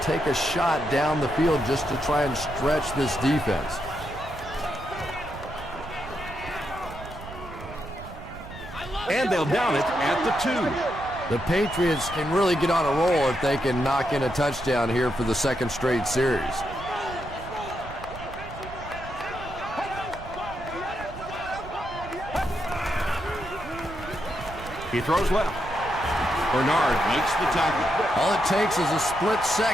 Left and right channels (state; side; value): noise; right; rumble, 13 dB below the sound